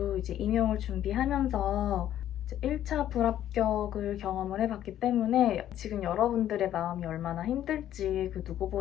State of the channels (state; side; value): quieter; right; 11.7 dB